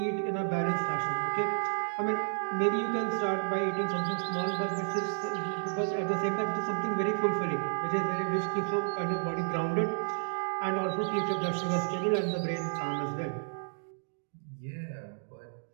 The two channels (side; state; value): left; silent; digital silence